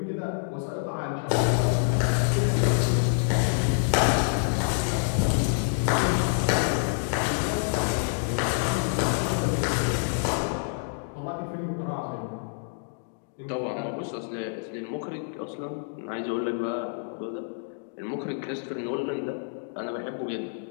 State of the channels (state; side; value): silent; right; digital silence